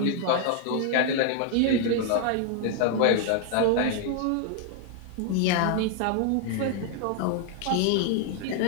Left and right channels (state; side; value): different; both; correlation 0.00